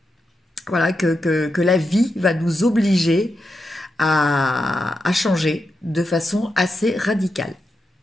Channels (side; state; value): both; normal; correlation 0.87